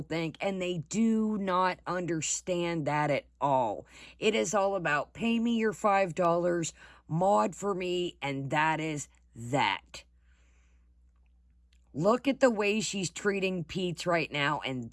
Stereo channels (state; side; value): identical; both; correlation 1.00